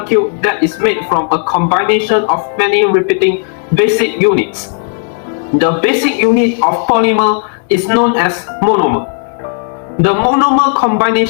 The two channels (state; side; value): silent; right; 56 dB below the other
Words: that is made from a combination of many repeating basic units. The basic unit of polymer is known as monomer. The monomer